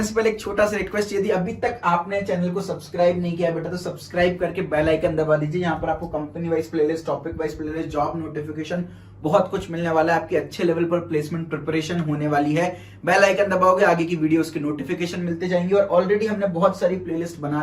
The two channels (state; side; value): identical; both; correlation 1.00